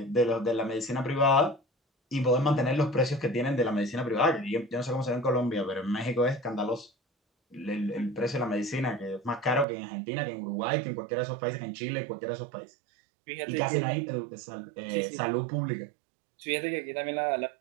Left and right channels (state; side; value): drops out; left; at 9.7 s